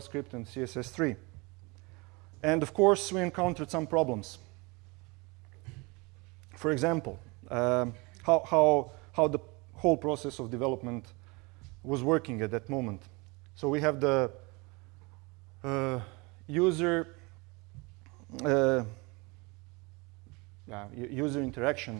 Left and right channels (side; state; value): left; quieter; 27.1 dB